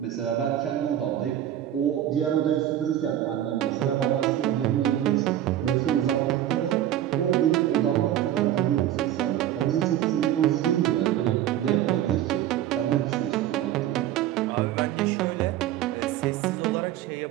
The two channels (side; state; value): left; quieter; 11.9 dB